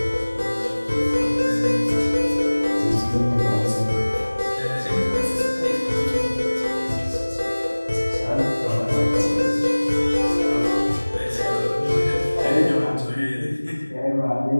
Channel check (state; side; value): inverted; both; correlation -1.00